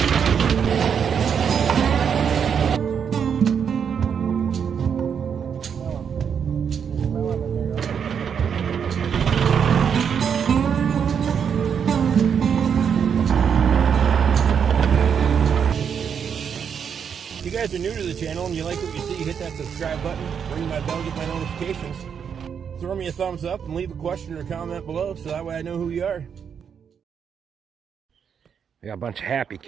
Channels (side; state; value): left; quieter; 7.3 dB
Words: If you guys are new to the channel and you like what you see, hit that subscribe button, ring my bell, get my notifications. Throw me a thumbs up and leave a question or comment below so that way I know who you are. We got a bunch of happy